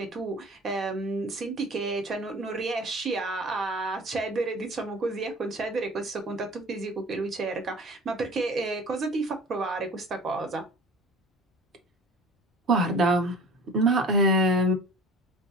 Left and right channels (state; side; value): normal; both; correlation 0.43